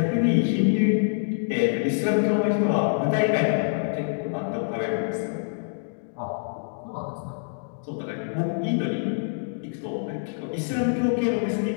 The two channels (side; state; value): right; silent; digital silence